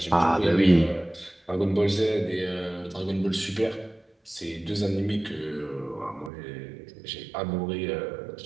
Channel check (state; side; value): drops out; left; at 6.3 s